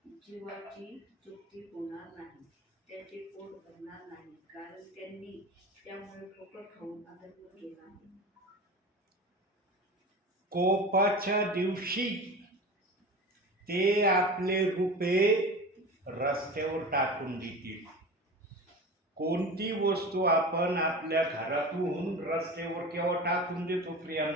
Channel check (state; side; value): normal; both; correlation 0.32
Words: जीवाची चुकी होणार नाही, त्याचे पोट भरणार नाही, कारण त्यांनी त्यामुळे ठोकर खाऊन अधर्म केला आहे. कोपाच्या दिवशी ते आपले रुपये रस्त्यावर टाकून देतील. कोणती वस्तू आपण आपल्या घरातून रस्त्यावर केव्हा टाकून देतो